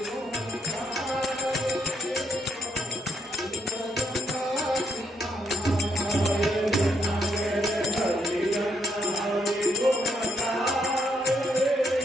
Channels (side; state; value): both; normal; correlation 0.75